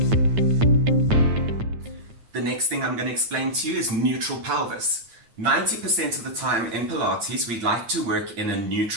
The next thing I'm going to explain to you is neutral pelvis. 90% of the time in Pilates, we like to work in a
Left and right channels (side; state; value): left; late; 8.9 ms